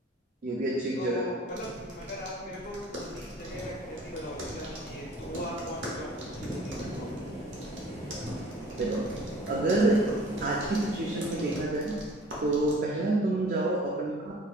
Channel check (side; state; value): both; normal; correlation 0.49